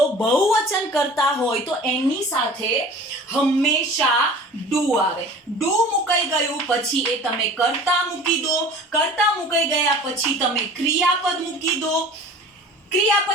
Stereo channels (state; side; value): normal; both; correlation 0.43